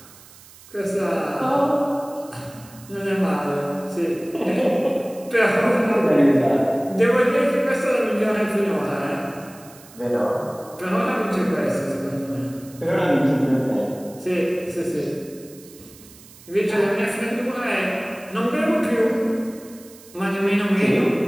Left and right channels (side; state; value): right; noise; hiss, 22 dB below the sound